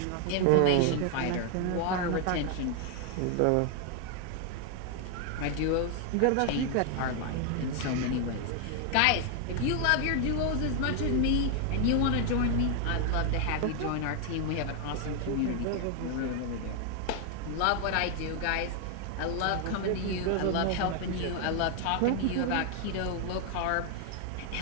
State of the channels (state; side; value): different; both; correlation 0.00